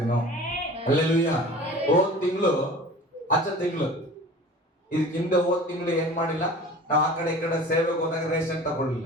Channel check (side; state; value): both; normal; correlation 0.41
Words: ಅಲ್ಲೆಲ್ಲೂಯ್ಯ. ಹೋದ್ ತಿಂಗಳು ಇದಕ್ಕೆ ಹಿಂದೆ ಹೋದ್ ತಿಂಗಳು ಏನ್ ಮಾಡಿಲ್ಲ, ನಾವು ಆ ಕಡೆ ಈ ಕಡೆ ಸೇವೆಗೆ ಹೋದಾಗ ರೇಷನ್ ತಗೊಳ್ಳಿಲ್ಲ.